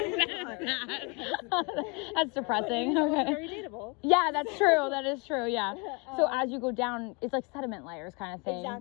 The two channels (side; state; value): right; quieter; 31.1 dB